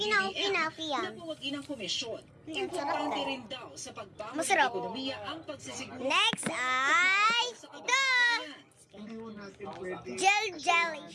na buwagin ang komisyon. Importante rin daw sa pagbangon ng ekonomiya ang pagsisiguro. Next ay ito! Jelly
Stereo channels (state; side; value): identical; both; correlation 1.00